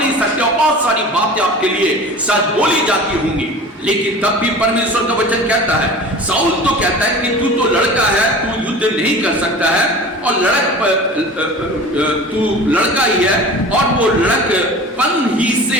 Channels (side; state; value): both; normal; correlation 0.38